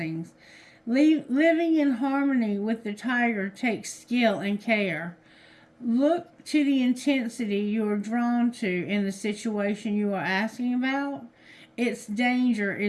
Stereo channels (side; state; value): both; identical; correlation 1.00